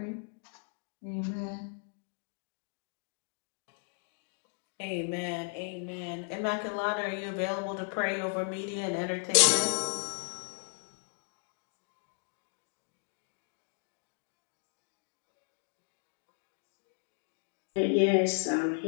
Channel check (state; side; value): silent; right; 54 dB below the other